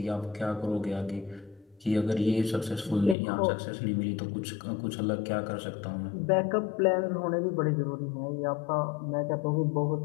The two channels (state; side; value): drops out; right; at 3.2 s